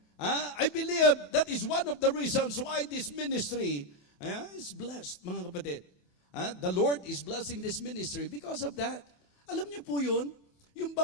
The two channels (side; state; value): right; late; 28 ms